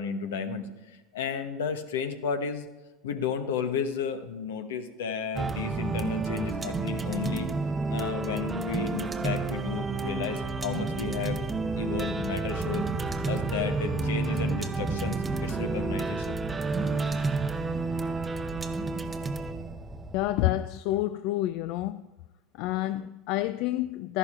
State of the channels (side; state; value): both; normal; correlation 0.41